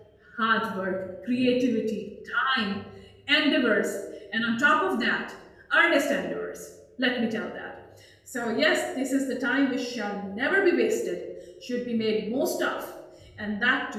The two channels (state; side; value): identical; both; correlation 1.00